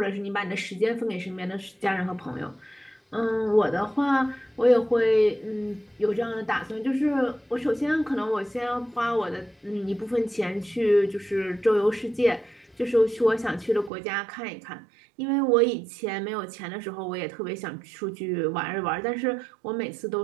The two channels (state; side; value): drops out; left; at 13.9 s